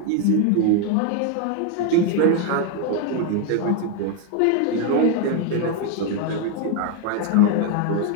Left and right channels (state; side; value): different; both; correlation 0.01